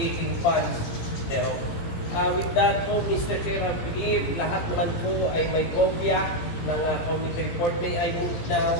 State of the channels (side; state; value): right; late; 17 ms